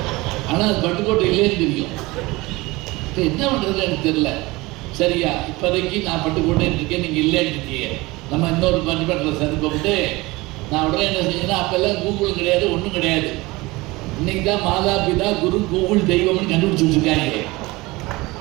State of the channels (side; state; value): left; quieter; 21.8 dB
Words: ஆனால் அது பட்டுக்கோட்டை இல்லைன்னு தெரியும். இப்போ என்ன பண்ணுறது எனக்கு தெரியல. சரியா, இப்போதைக்கு நான் பட்டுக்கோட்டைன்னு இருக்கேன், நீங்கள் இல்லைன்னு இருக்கீங்க. நம்ம இன்னொரு பட்டிமன்றத்தில் சந்திப்போம்ட்டு நான் உடனே என்ன செஞ்சேன்னா, அப்போல்லாம் கூகுளும் கிடையாது, ஒன்றும் கிடையாது. இன்னைக்கு தான் மாதா பிதா குரு கூகுள் தெய்வம்னு கண்டுபிடிச்சி வச்சுருக்காங்க.